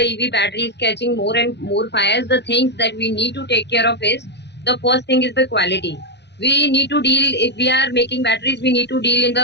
EV batteries catching more and more fires, the things that we need to take care of is, the first thing is the quality. We need to deal, if we are making batteries, we need to deal in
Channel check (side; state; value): right; late; 0.50 ms